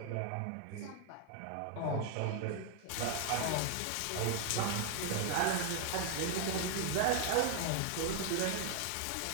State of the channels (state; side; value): different; both; correlation 0.01